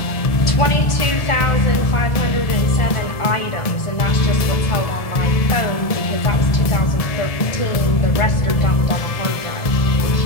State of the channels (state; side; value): late; right; 1.7 ms